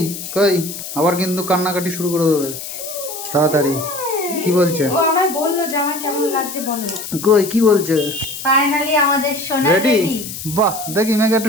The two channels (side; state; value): left; noise; hiss, 9 dB below the sound